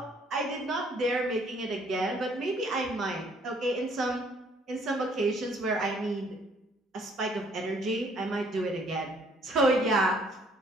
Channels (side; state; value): both; normal; correlation 0.63